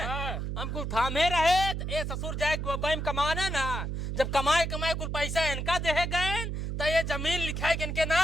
हम कुल थामे रहे। ए ससुर जाए बम कमाना ना, जब कमाए कमाए कुल पैसा इनका दे गए तो ये जमीन लिखाए के इनके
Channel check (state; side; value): noise; right; hum, 3 dB below the sound